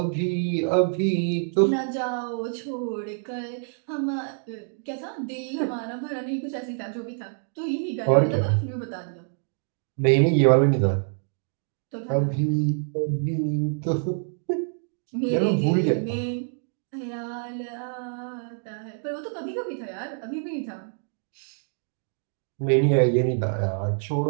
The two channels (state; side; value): silent; left; 61 dB below the other